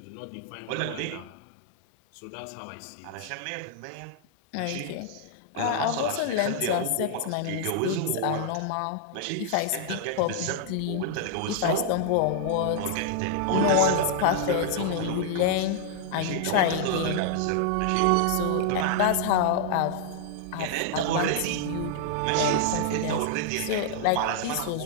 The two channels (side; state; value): both; different; correlation -0.01